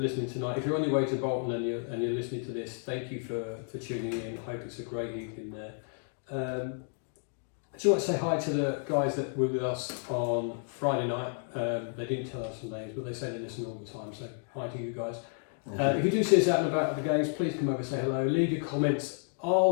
tonight. If you're on your way to Bolton and you're listening to this, thank you for tuning in. I hope it's a great evening there. Do you want to say hi to the guys that were with us on Friday night? They didn't tell us their names, but they say they listen all the time. So hi to you guys. If you do see us out and about at the games, please come over and say hello. Leave your comments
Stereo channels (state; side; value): silent; right; 56 dB below the other